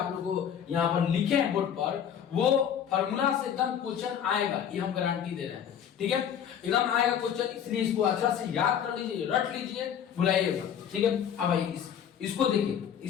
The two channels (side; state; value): right; quieter; 8.8 dB